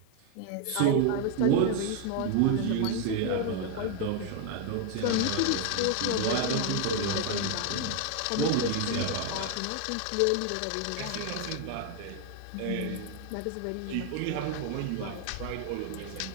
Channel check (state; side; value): different; both; correlation 0.01